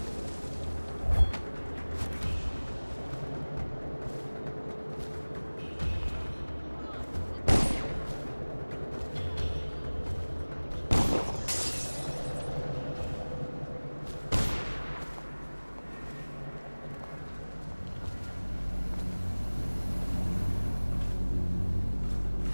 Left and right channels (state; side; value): inverted; both; correlation -1.00